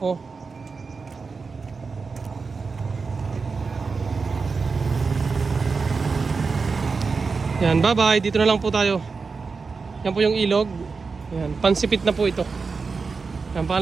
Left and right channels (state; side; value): quieter; left; 4.7 dB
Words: Oh. Yan, bye bye. Dito na lang po tayo. Yan po yung ilog. Yan, pansipit na po ito. Yan,